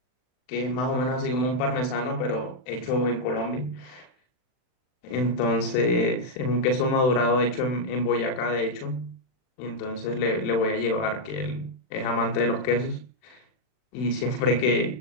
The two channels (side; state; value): right; late; 40 ms